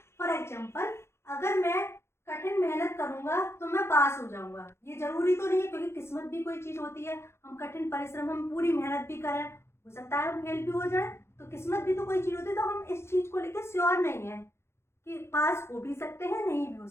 फॉर एग्जाम्पल, अगर मैं कठिन मेहनत करूंगा तो मैं पास हो जाऊंगा, ये जरूरी तो नहीं है, क्योंकि किस्मत भी कोई चीज होती है। हम कठिन परिश्रम, हम पूरी मेहनत भी करें, हो सकता है हम फेल भी हो जाए, तो किस्मत भी तो कोई चीज होती है। तो हम इस चीज को लेकर श्योर नहीं है कि पास हो भी सकते हैं, नहीं भी हो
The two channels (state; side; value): late; right; 0.12 ms